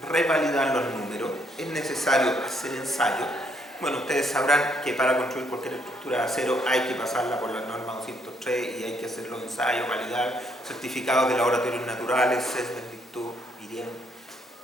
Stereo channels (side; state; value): both; normal; correlation 0.71